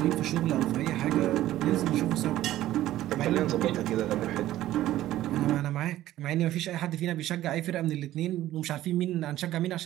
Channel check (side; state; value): left; quieter; 14.2 dB